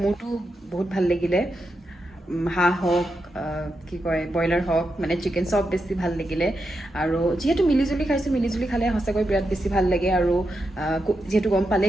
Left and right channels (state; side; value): normal; both; correlation 0.86